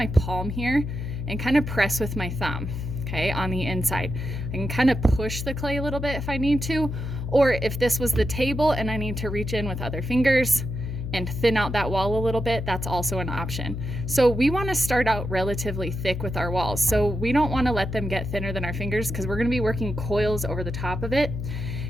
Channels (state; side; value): noise; left; hum, 5 dB below the sound